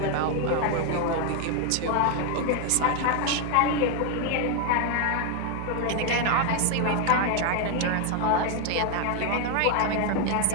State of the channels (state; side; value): different; both; correlation 0.01